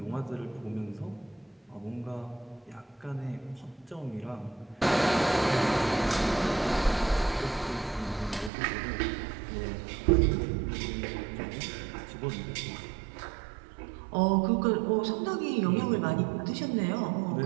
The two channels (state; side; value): drops out; left; at 8.5 s